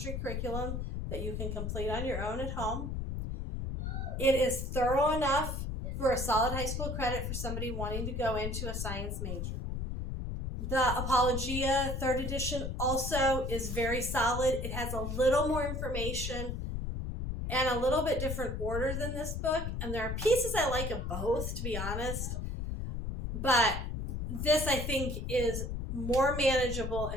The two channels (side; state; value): left; noise; rumble, 3 dB below the sound